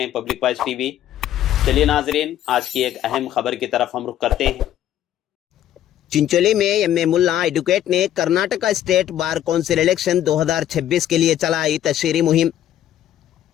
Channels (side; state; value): right; quieter; 11.8 dB